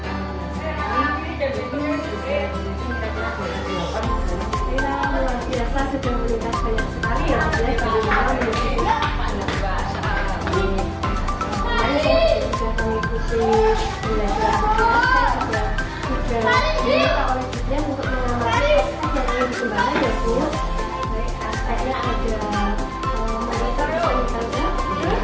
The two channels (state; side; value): identical; both; correlation 1.00